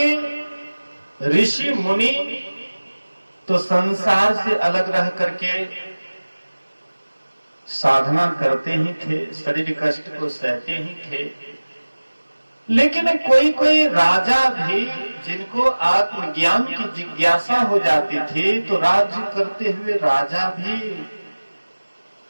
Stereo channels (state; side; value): inverted; both; correlation -1.00